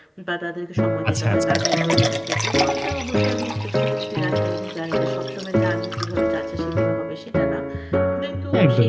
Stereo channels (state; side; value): identical; both; correlation 1.00